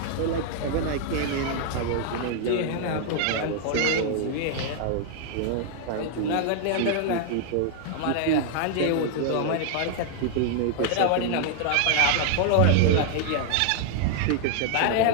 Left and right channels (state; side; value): different; both; correlation 0.00